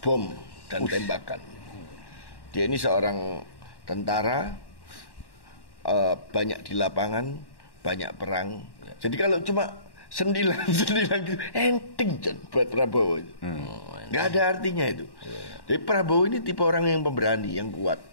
bom dan tembakan. Dia ini seorang tentara, banyak di lapangan, banyak perang. Jadi kalau cuma sendilan gitu, enteng buat Prabowo. Nggak ada artinya itu. Jadi Prabowo ini tipe orang yang pemberani, yang kuat.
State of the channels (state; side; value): late; right; 1.1 ms